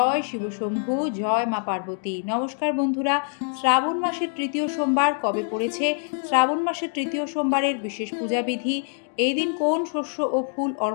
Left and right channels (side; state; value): right; silent; 62 dB below the other